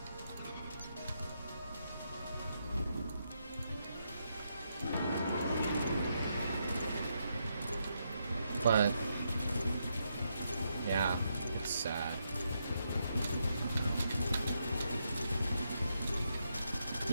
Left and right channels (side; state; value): both; inverted; correlation -0.80